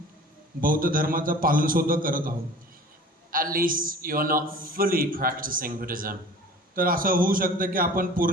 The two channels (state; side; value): normal; both; correlation 0.43